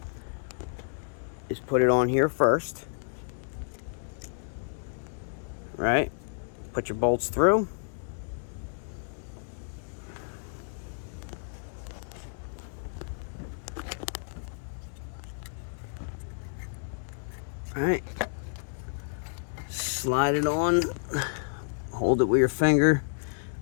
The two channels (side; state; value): right; silent; 58 dB below the other